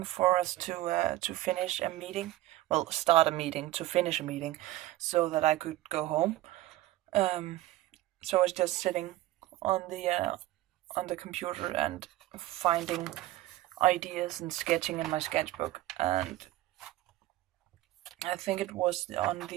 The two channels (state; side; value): quieter; left; 16.1 dB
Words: for us to finish a meeting. Well, start a meeting to finish a meeting, so that I could go home. So I was just sitting on the computer and finding ideas and sketching in my sketchbook, and I think it was on